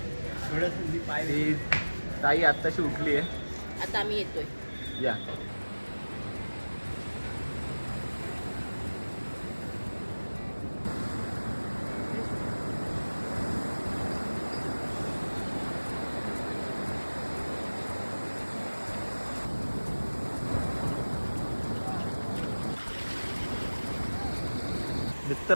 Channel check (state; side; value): inverted; both; correlation -1.00